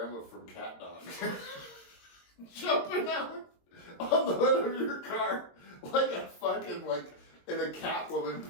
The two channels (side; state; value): right; late; 22 ms